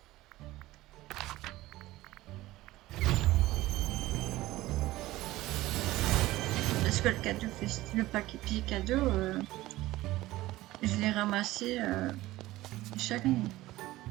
Parce que le cadeau, le paquet cadeau, je l'ai ramassé chaque année.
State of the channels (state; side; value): quieter; left; 17.3 dB